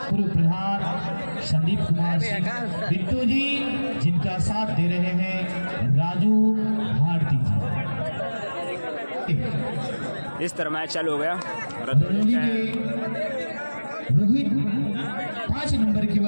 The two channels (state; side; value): inverted; both; correlation -1.00